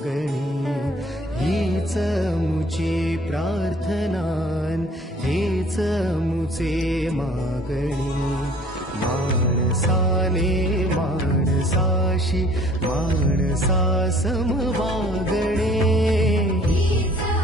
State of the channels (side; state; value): both; normal; correlation 0.54